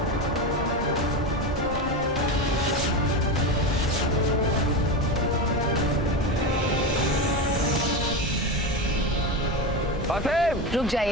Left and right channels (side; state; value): both; normal; correlation 0.18